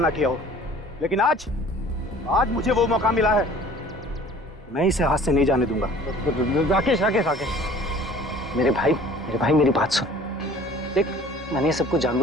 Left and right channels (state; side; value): normal; both; correlation 0.49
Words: किया हो। लेकिन आज मुझे वो मौका मिला है, मैं इसे हाथ से नहीं जाने दूंगा। राकेश, मेरे भाई मेरी बात सुन। देख, मैंने ये सब कुछ